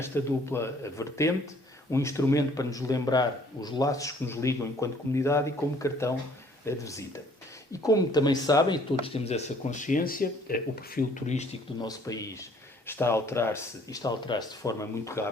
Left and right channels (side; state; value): both; normal; correlation 0.59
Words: dupla vertente, um instrumento para nos lembrar os laços que nos ligam enquanto comunidade e como cartão de visita. E como também sabem, e todos temos essa consciência, o perfil turístico do nosso país está a alterar-se de forma muito